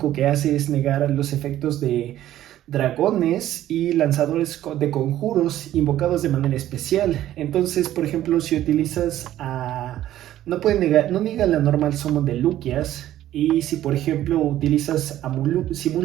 que hace es negar los efectos de dragones y lanzadores de conjuros invocados de manera especial. Entonces, por ejemplo, si utilizas a... no niega la normal summon de Luquias. Y si por ejemplo utilizas a Mululu, si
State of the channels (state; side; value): quieter; left; 13.1 dB